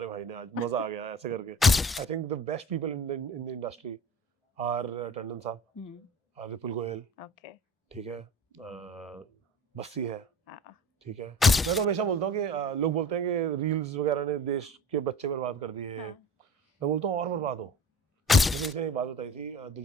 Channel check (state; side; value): normal; both; correlation 0.41